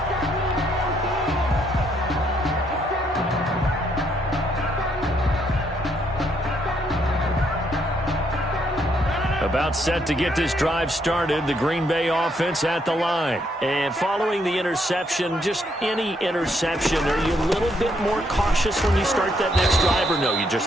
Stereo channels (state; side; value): normal; both; correlation 0.73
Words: About set to get this drive started, the Green Bay offense at the line. And following the interception, just any interception, are you a little bit more cautious when you start that next drive, or no, you